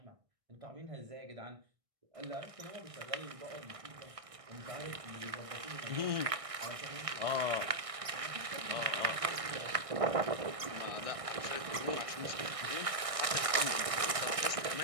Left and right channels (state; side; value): late; left; 1.6 ms